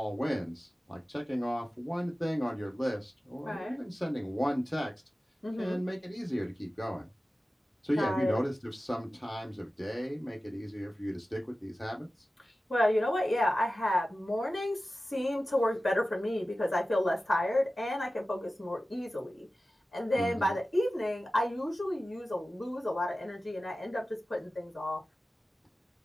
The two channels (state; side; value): normal; both; correlation 0.95